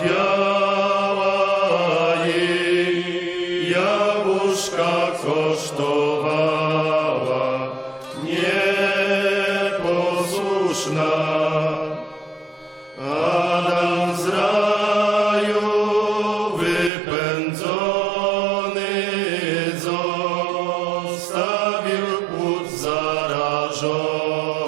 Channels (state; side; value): drops out; left; at 16.9 s